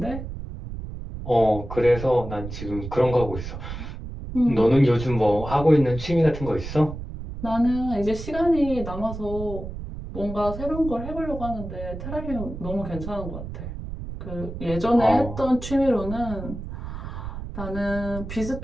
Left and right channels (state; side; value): noise; right; rumble, 9 dB below the sound